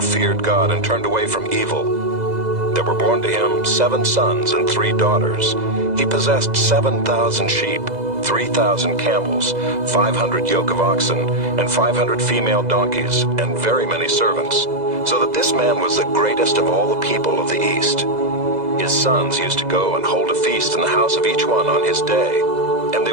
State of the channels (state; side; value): late; left; 2.0 ms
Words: feared God and turned away from evil. There were born to him 7 sons and 3 daughters. He possessed 7,000 sheep, 3,000 camels, 500 yoke of oxen, and 500 female donkeys, and very many servants, so that this man was the greatest of all the people of the East. His sons used to go and hold a feast in the house of each one on his day, and they